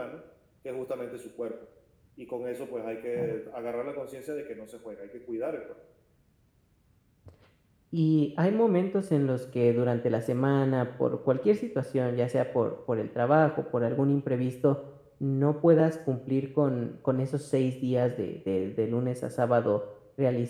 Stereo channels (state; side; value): identical; both; correlation 1.00